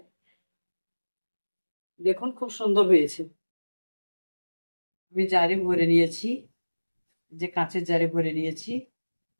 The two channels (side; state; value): both; inverted; correlation -1.00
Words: দেখুন খুব সুন্দর হয়েছে। আমি জারে ভরে নিয়েছি, যে কাঁচের জারে ভরে নিয়েছি